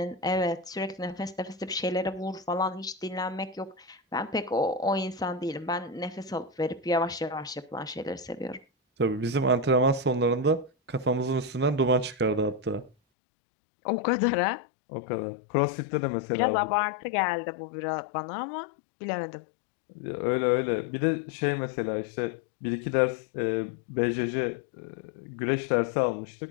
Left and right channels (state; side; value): drops out; right; at 13.0 s